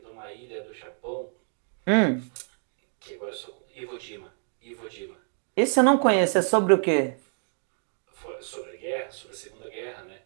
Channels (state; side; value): silent; left; 59 dB below the other